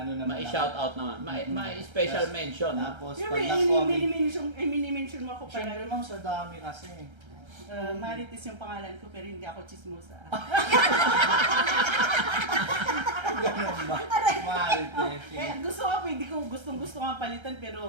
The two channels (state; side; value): late; left; 1.3 ms